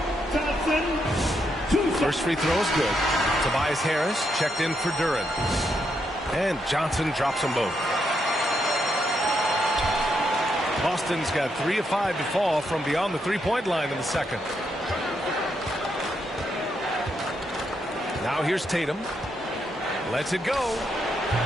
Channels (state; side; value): normal; both; correlation 0.79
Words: Johnson. First free throw is good. Tobias Harris checked in for Duren. And Johnson drops them both. Boston's got 3 of 5 to fall from beyond the three-point line in the second. Now here's Tatum. Lets it go.